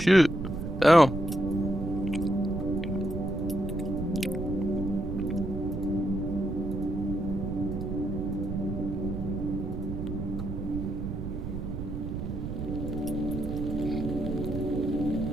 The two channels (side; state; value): right; noise; rumble, 5 dB below the sound